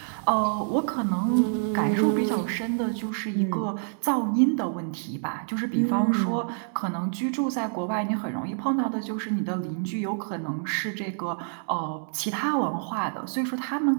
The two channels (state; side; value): silent; left; 60 dB below the other